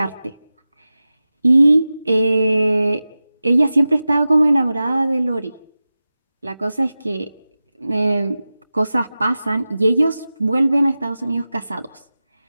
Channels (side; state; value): both; inverted; correlation -0.95